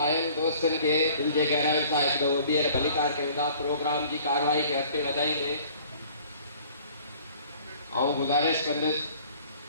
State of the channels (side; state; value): both; inverted; correlation -0.52